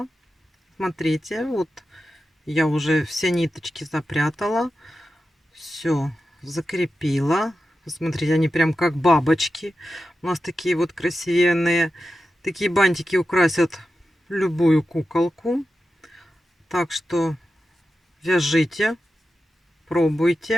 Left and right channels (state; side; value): normal; both; correlation 0.91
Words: Смотрите, вот я уже все ниточки запрятала. Все закрепила. Смотрите, они прям как бабочки. У нас такие вот красивенные. Такие бантики украсят любую куколку. Так что вяжите,